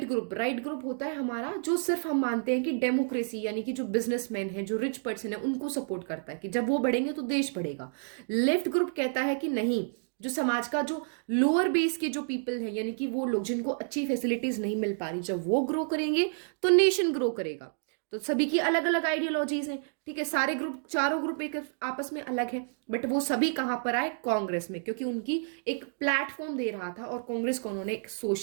ग्रुप, राइट ग्रुप होता है हमारा जो सिर्फ हम मानते हैं कि डेमोक्रेसी, यानी कि जो बिजनेसमैन है, जो रिच पर्सन है, उनको सपोर्ट करता है कि जब वो बढ़ेंगे तो देश बढ़ेगा। लेफ्ट ग्रुप कहता है कि नहीं, जो समाज का जो लोअर बेस के जो पीपल है, यानी कि वो लोग जिनको अच्छी फैसिलिटीज नहीं मिल पा रही, जब वो ग्रो करेंगे तो नेशन ग्रो करेगा। तो सभी की अलग अलग आइडियोलॉजीज हैं, ठीक है, सारे ग्रुप, चारों ग्रुप एक आपस में अलग है, बट वो सभी कहां पर आए? कांग्रेस में, क्योंकि उनकी एक प्लेटफॉर्म दे रहा था, और कांग्रेस को उन्होंने एक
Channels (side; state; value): left; silent; digital silence